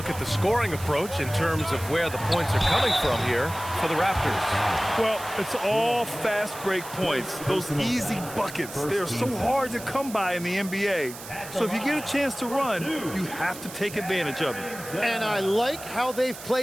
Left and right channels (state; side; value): noise; right; hiss, 13 dB below the sound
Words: at the scoring approach in terms of where the points are coming from here for the Raptors. Well, it's all fast break points, those easy buckets. They're so hard to come by in the NBA. So if you get a chance to run, you have to take advantage of it. And I like how they've